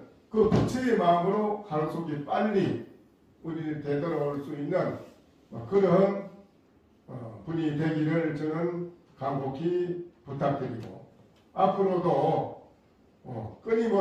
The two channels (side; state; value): both; identical; correlation 1.00